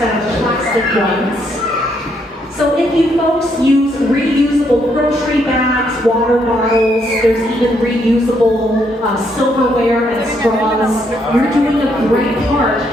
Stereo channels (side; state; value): both; normal; correlation 0.73